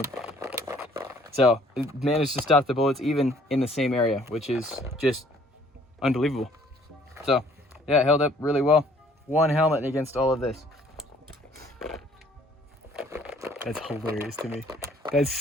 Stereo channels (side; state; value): both; normal; correlation 0.59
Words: So it managed to stop the bullets even in the same area, which is just unbelievable. So yeah, it held up really well. 1 helmet against all of this. That's hilarious to me. That's